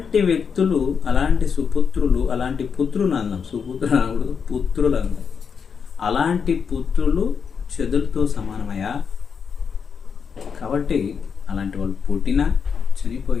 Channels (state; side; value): quieter; right; 6.4 dB